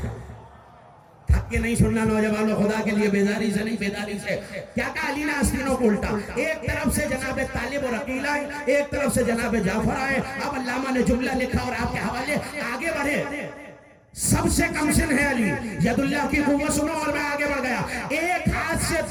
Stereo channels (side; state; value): both; identical; correlation 1.00